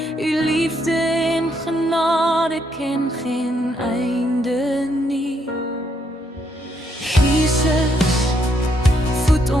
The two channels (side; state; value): both; normal; correlation 0.75